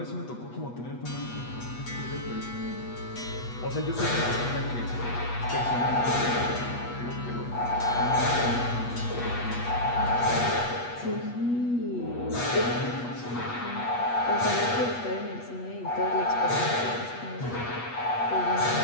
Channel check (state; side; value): late; right; 8.3 ms